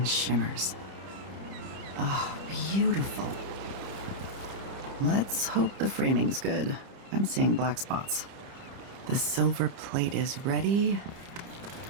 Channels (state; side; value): late; left; 30 ms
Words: shimmers. Ah, beautiful. Let's hope the framing's good. I'm seeing black spots. The silver plate is ready.